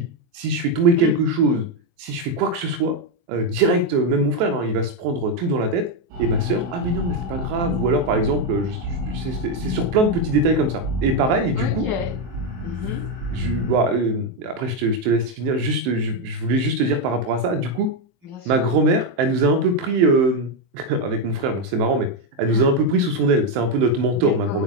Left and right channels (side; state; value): left; late; 23 ms